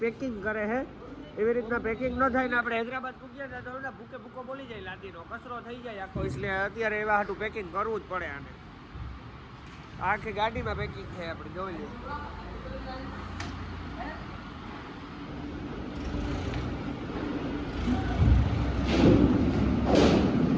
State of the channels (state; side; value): identical; both; correlation 1.00